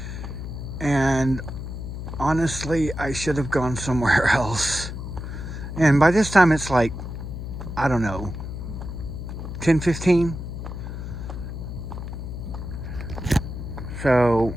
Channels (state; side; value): noise; left; hum, 7 dB below the sound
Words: And honestly, I should have gone somewhere else. And by this time, it's like, I don't know, 10:15. So